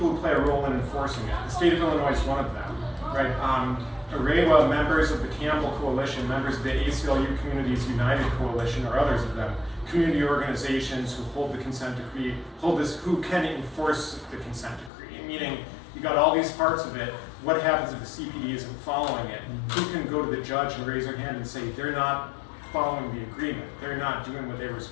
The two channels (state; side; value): drops out; right; at 14.9 s